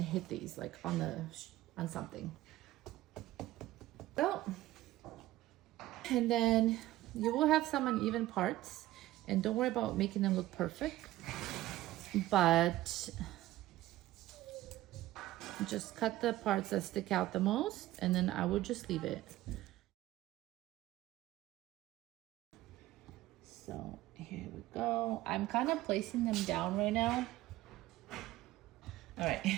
hit these like on something. So, and then you will have some uneven parts, and don't worry about making them look perfect, but just cut the parts that stick out the most, and then I will just leave it. So here we go. I'm kind of placing them down right now. All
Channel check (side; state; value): left; quieter; 15.8 dB